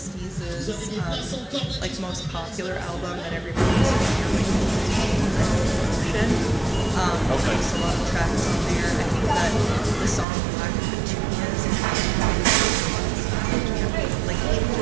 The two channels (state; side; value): drops out; left; at 10.2 s